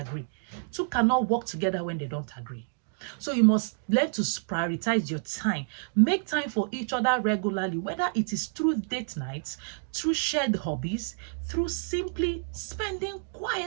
Two cannot work together when they don't agree. So you must learn to prioritize your time. Make time for each other regularly, whether it is through date nights, through shared hobbies, through simply spending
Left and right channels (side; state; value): left; silent; digital silence